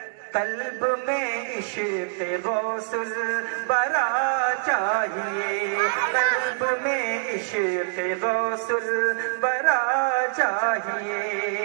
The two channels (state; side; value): silent; left; digital silence